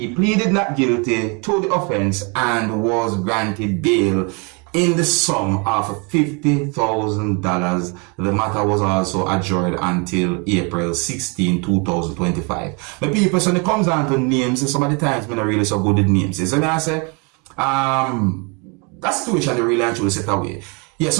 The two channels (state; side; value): quieter; left; 32.5 dB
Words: pleaded not guilty to the offense and was granted bail in the sum of $50,000. The matter was also adjourned until April 16, 2025. But people, when it comes down to names, some of the times I'm not really so good at names. So I say, that situation they really actually set away. Yeah,